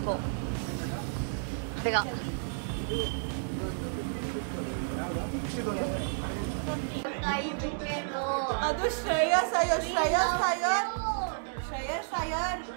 ಬೇಗ. ಅದು Shreyas Iyer. Shreyas Iyer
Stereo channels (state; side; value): silent; left; 57 dB below the other